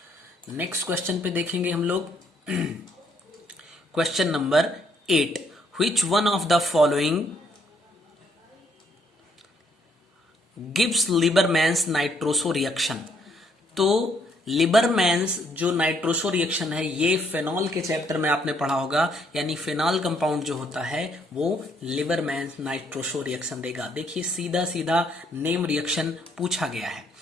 नेक्स्ट क्वेश्चन पे देखेंगे हम लोग, question number 8, which one of the following gives Liebermann's nitroso reaction. तो लिबरमैन्स जो नाइट्रोसो रिएक्शन है, ये फेनॉल के चैप्टर में आपने पढ़ा होगा, यानी फेनॉल कंपाउंड जो होता है वो लिबरमैन्स नाइट्रोसो रिएक्शन देगा। देखिए सीधा सीधा नेम रिएक्शन पूछा गया है।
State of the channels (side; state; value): both; normal; correlation 0.70